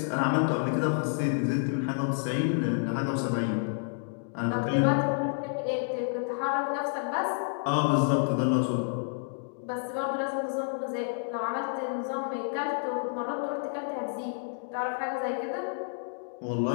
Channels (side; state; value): right; silent; digital silence